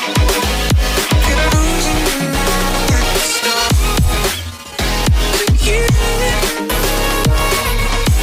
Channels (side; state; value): both; identical; correlation 1.00